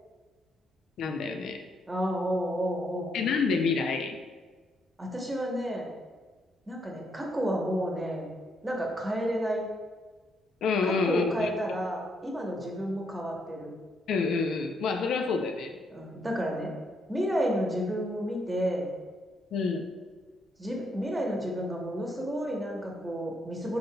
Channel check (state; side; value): normal; both; correlation 0.75